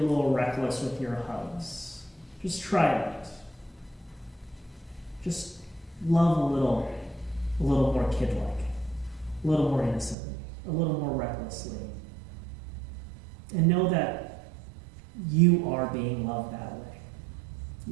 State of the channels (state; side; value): drops out; left; at 10.2 s